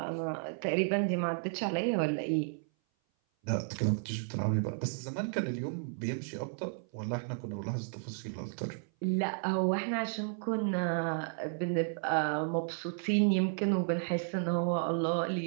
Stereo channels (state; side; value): silent; left; 56 dB below the other